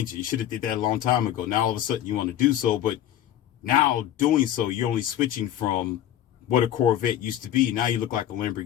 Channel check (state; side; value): quieter; right; 11.6 dB